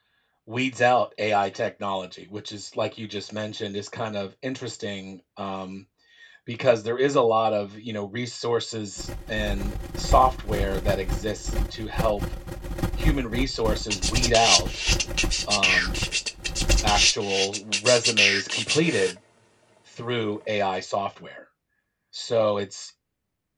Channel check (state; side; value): identical; both; correlation 1.00